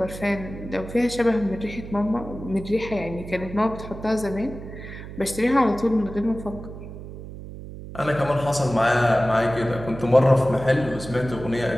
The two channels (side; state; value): right; noise; hum, 12 dB below the sound